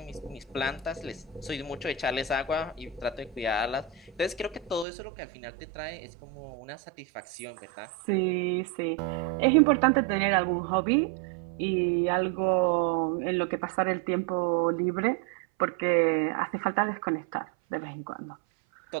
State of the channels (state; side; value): drops out; left; at 4.9 s